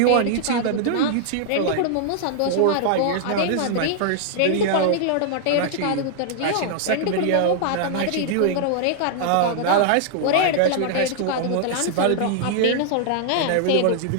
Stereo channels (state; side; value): different; both; correlation -0.01